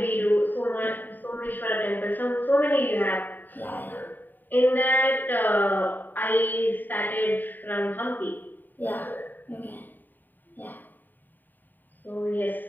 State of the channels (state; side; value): late; right; 0.090 ms